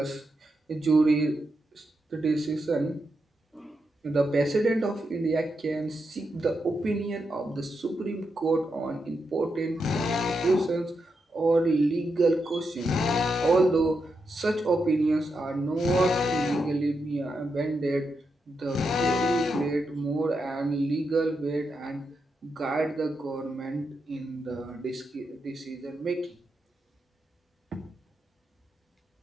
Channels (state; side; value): normal; both; correlation 0.85